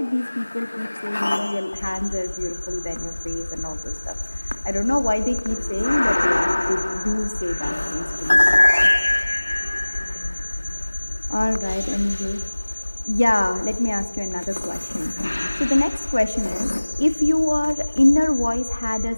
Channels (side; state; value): both; inverted; correlation -1.00